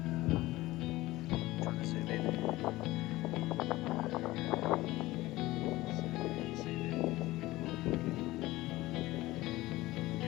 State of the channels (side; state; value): right; quieter; 18.3 dB